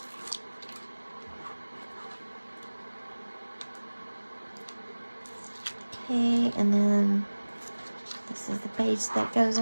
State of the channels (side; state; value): both; inverted; correlation -1.00